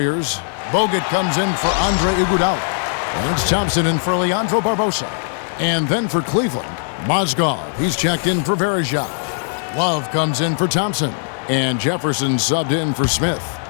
Bogut comes in for Andre Iguodala. And it's Thompson in for Leandro Barbosa. And then for Cleveland, Mozgov. He's checked in for Bergeau. Love comes in for Thompson. And Jefferson subbed in for Smith.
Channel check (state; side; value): silent; right; 60 dB below the other